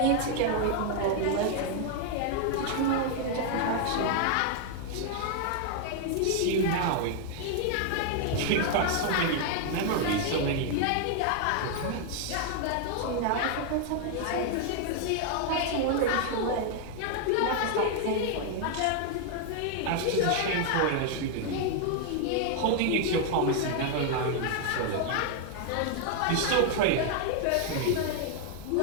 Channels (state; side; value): different; both; correlation 0.00